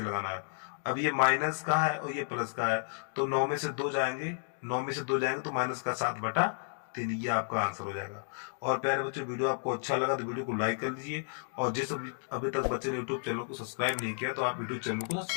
लगाना है। अब ये माइनस का है और ये प्लस का है, तो 9 में से 2 जाएंगे, 9 में से 2 जाएंगे तो माइनस का 7 बटा 3, ये आपका आंसर हो जाएगा। और प्यारे बच्चों, वीडियो आपको अच्छा लगा तो वीडियो को लाइक कर लीजिए, और जिस अभी तक बच्चे ने यूट्यूब चैनल को सब्सक्राइब नहीं किया तो आप यूट्यूब चैनल को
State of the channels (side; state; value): right; silent; 56 dB below the other